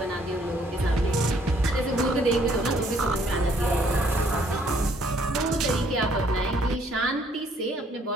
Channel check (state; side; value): normal; both; correlation 0.65